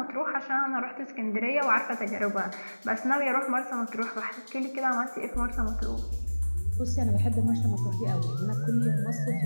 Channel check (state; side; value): inverted; both; correlation -1.00